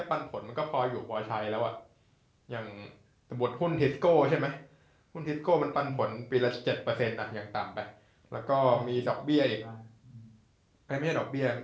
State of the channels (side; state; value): both; identical; correlation 1.00